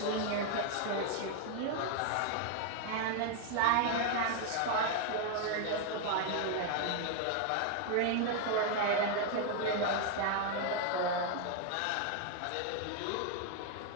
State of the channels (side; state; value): both; different; correlation 0.00